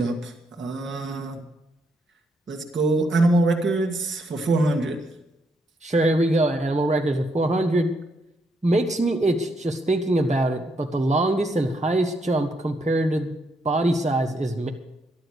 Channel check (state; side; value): normal; both; correlation 0.77